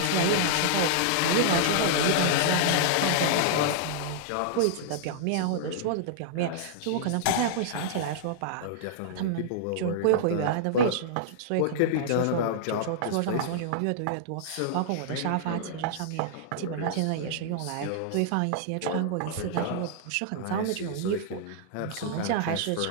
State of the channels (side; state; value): both; different; correlation -0.02